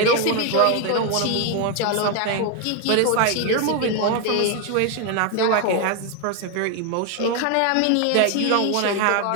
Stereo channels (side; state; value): both; different; correlation 0.01